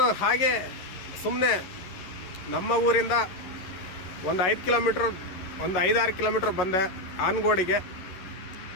ಹಾಗೆ ಸುಮ್ಮನೆ ನಮ್ಮ ಊರಿಂದ ಒಂದು 5-6 ಕಿಲೋಮೀಟ್ರ್ ಬಂದೆ ಆನಗೋಡಿಗೆ.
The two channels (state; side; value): late; right; 11 ms